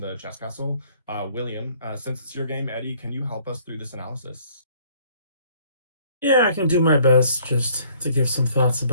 chess castle, William. Since it's your game, Eddie, can you help us through this analysis? Yeah, I can do my best just to give some thoughts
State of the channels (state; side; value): inverted; both; correlation -0.60